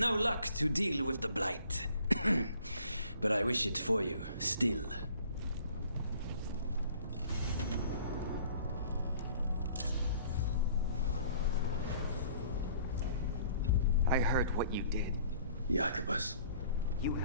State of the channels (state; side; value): inverted; both; correlation -0.54